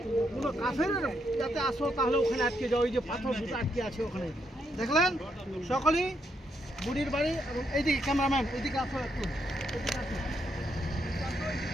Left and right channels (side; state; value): both; normal; correlation 0.78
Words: কোনো কাফেরের যাতে আসো তাহলে ওখানে আটকে যাও। ওই যে পাথর দুটো আটকে আছে ওখানে দেখলেন। সকলেই বুড়ির বাড়ি। এবং এইদিকে ক্যামেরাম্যান এইদিকে আসো একটু, এদিকে আসো।